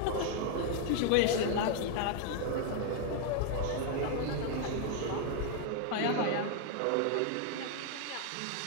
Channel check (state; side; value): different; both; correlation 0.00